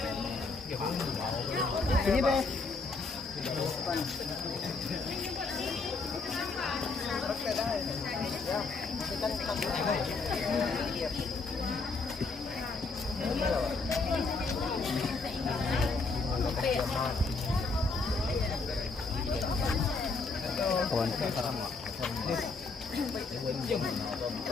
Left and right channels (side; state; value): right; quieter; 4.0 dB